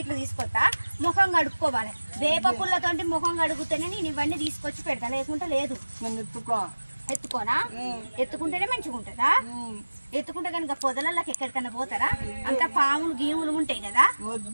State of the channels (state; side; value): inverted; both; correlation -1.00